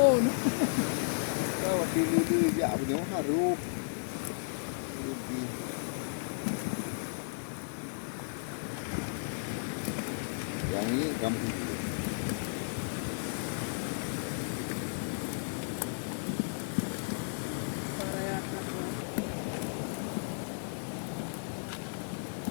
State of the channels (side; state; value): right; silent; 55 dB below the other